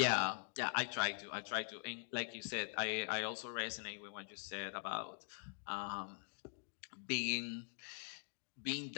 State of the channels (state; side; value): silent; right; digital silence